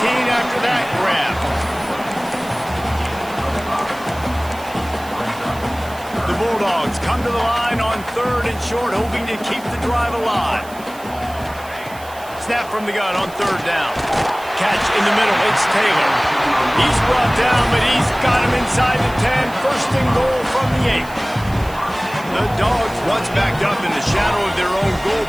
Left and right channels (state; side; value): noise; right; hiss, 20 dB below the sound